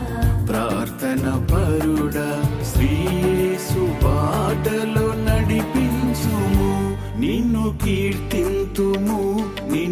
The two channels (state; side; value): identical; both; correlation 1.00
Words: ప్రార్థన పరుడా శ్రీయేసు బాటలో నడిపించుము నిన్ను కీర్తింతుము